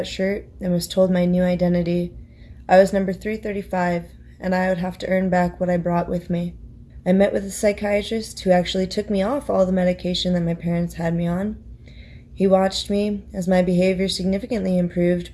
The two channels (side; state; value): both; identical; correlation 1.00